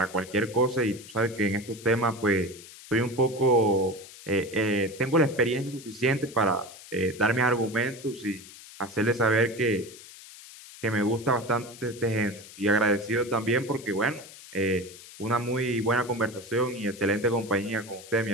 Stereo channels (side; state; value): left; noise; hiss, 17 dB below the sound